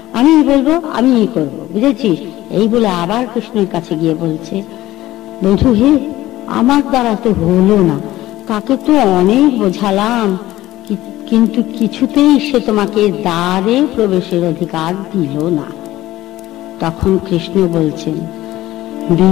আমি বলবো, আমি করবো, বুঝেছিস? এই বলে আবার কৃষ্ণের কাছে গিয়ে বলছে, বন্ধু হে, আমার দ্বারা তো হলো না, তাকে তো অনেক বোঝালাম, কিন্তু কিছুতেই সে তোমাকে দ্বারে প্রবেশের অধিকার দিল না। তখন কৃষ্ণ বলছেন,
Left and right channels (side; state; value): right; quieter; 15.8 dB